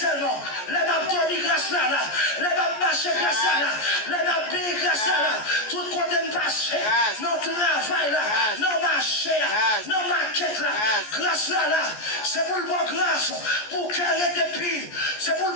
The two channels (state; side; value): late; right; 14 ms